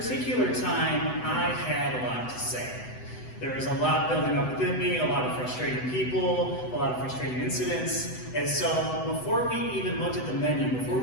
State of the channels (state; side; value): late; right; 8.0 ms